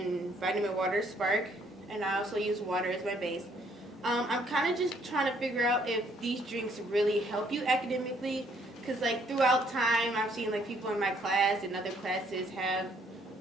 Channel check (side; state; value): both; normal; correlation 0.66